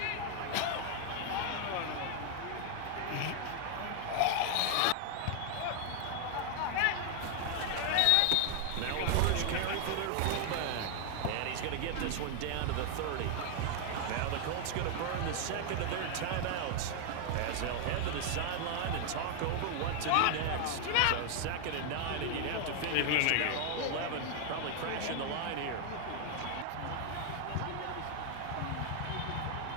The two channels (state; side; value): different; both; correlation 0.00